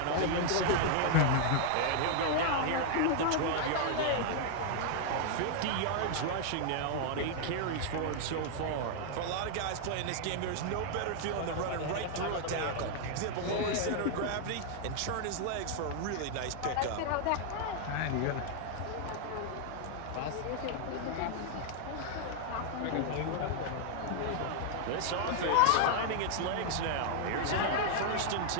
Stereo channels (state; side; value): different; both; correlation 0.00